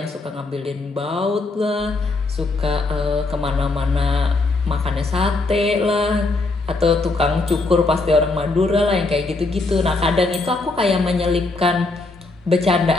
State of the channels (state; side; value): quieter; right; 3.4 dB